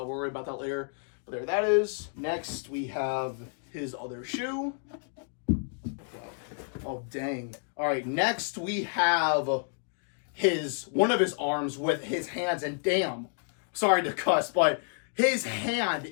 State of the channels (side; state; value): right; silent; 58 dB below the other